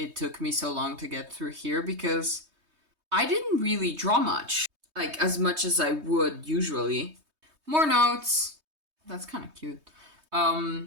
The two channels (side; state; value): left; late; 3.2 ms